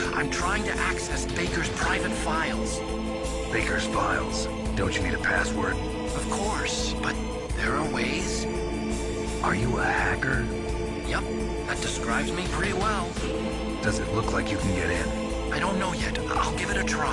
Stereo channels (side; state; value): both; identical; correlation 1.00